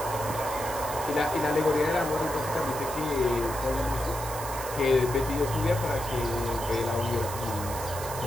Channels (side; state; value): right; noise; hiss, 10 dB below the sound